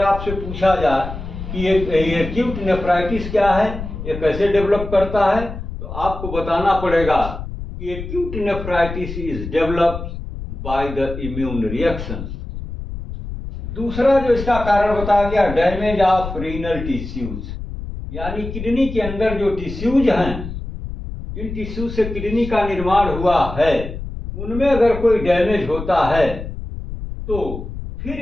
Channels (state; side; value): noise; left; rumble, 8 dB below the sound